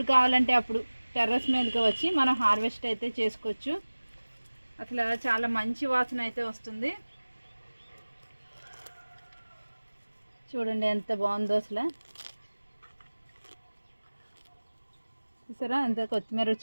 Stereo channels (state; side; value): inverted; both; correlation -1.00